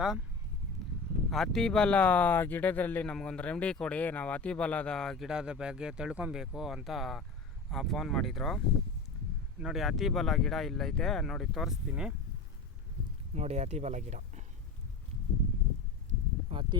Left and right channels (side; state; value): right; quieter; 3.9 dB